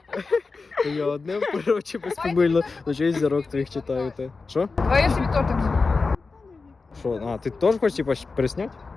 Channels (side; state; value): right; quieter; 4.2 dB